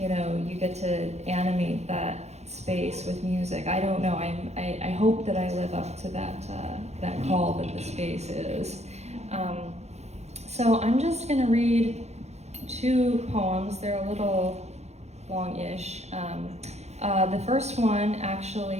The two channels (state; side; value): late; left; 0.32 ms